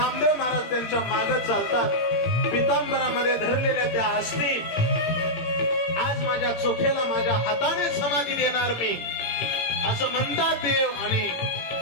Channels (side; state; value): right; late; 18 ms